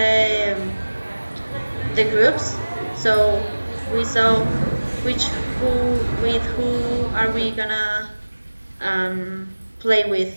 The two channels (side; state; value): both; inverted; correlation -1.00